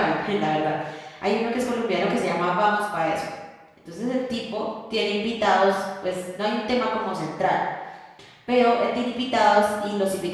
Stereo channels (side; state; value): both; identical; correlation 1.00